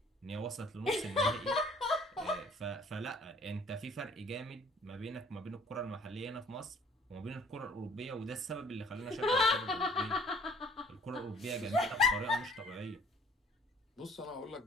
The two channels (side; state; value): both; normal; correlation 0.57